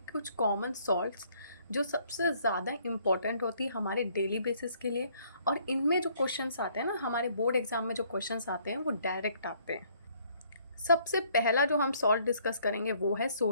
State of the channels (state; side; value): inverted; both; correlation -0.64